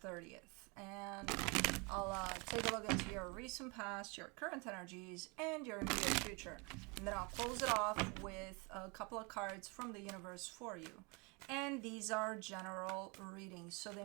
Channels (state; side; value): quieter; left; 30.3 dB